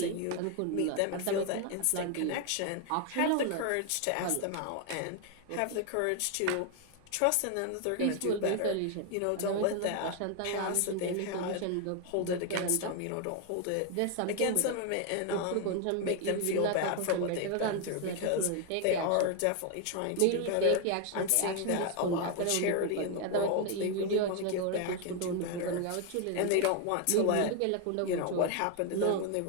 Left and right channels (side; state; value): both; different; correlation 0.01